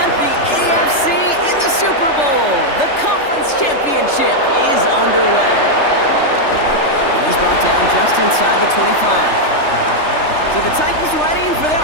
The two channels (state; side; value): late; right; 3.3 ms